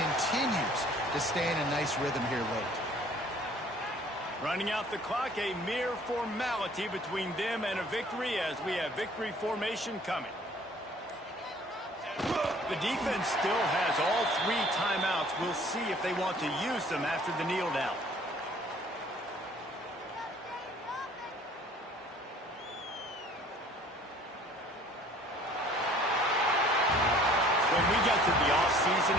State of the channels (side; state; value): both; normal; correlation 0.54